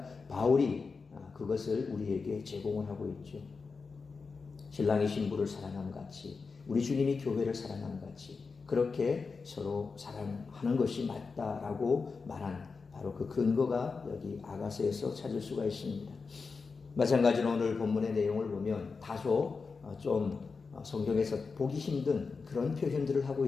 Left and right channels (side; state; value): right; quieter; 4.7 dB